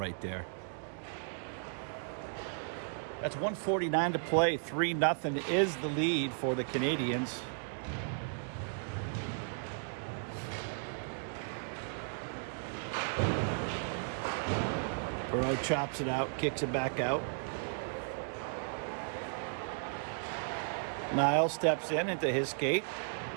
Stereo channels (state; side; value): silent; left; digital silence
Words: there. That's 1:49 to play. 3-0 is the lead for the Canadians. Perot chops it out, kicks it back out. Niles steps in into his skate,